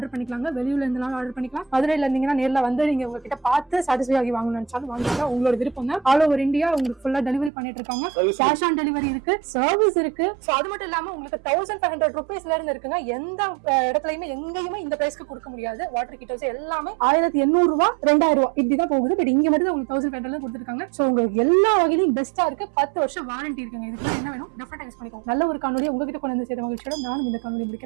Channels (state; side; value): drops out; left; at 7.5 s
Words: பண்ணிக்கலாங்க. வெளியூர்ல இருந்தாலும் ஆர்டர் பண்ணிக்கலாம். மதுரையில இருந்தீங்கன்னா நேர்ல வந்து நீங்க உங்ககிட்ட பார்த்து சாட்டிஸ்ஃபை ஆகி வாங்கணும்னு நினைச்சாலும் வாங்கிக்கலாம். உங்களோட விருப்பம் தான். ஆல் ஓவர் இந்தியா உங்களுக்கு ஃபுல்லா டெலிவரி பண்ணிட்டு இருக்காங்க. கேஷ் ஆன் டெலிவரி இருக்கு, சர்வீஸ் இருக்கு. சோ அது மட்டும் இல்லாம உங்களுக்கு 1500 rupeesல இருந்து இருக்குங்க. எந்த இடத்துலயுமே எங்கேயுமே இந்த பிரைஸ்க்கு கொடுக்க முடியாது. வாட்டர் ஹீட்டர்ஸ் எல்லாமே 1800 ரூபாய் 2000 ரூபாய் இப்படிதான் போகுது. பட் இங்க மட்டும் உங்களுக்கு 1500 கொடுத்துருக்காங்க. சோ உங்களுக்கு எல்லா வகையிலும் பெஸ்டா இருக்கு. 10 வருஷம் வாரண்டி இருக்குங்க. இதுக்கு என்ன வேணும் டெஃபினட்டா யூஸ் பண்ணிக்கோங்க. நல்ல ஒரு காணொலி உங்ககிட்ட கொண்டு வந்து சேர்த்த மகிழ்ச்சியோட நானும் இந்த காணொலி